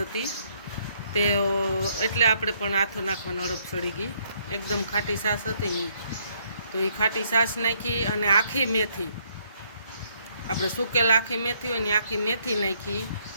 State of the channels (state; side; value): inverted; both; correlation -0.69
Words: હતી તે, એટલે આપણે પણ આથો નાખવાનો અડપ ચડી ગઈ. એકદમ ખાટી છાશ હતી તો એ ખાટી છાશ નાખી અને આખી મેથી, આપણે સૂકેલ આખી મેથી હોય ને આખી મેથી નાખી